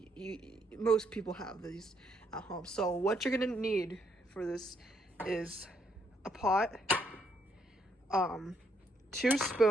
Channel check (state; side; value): normal; both; correlation 0.73